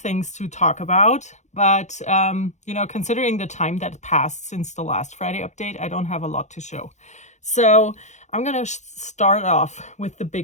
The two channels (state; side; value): late; right; 0.34 ms